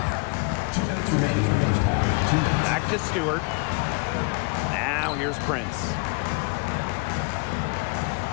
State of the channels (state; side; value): quieter; right; 32.0 dB